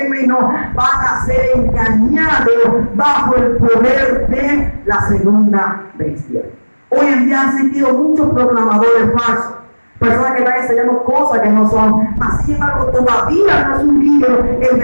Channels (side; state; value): both; inverted; correlation -1.00